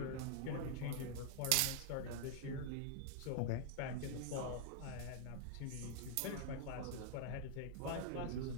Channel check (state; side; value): different; both; correlation -0.01